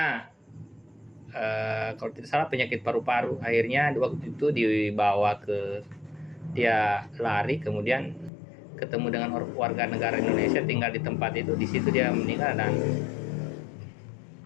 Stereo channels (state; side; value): drops out; right; at 8.3 s